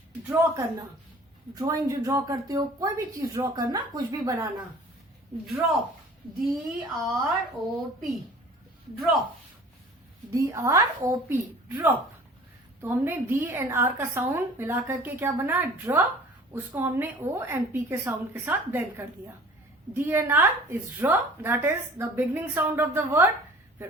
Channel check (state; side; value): normal; both; correlation 0.47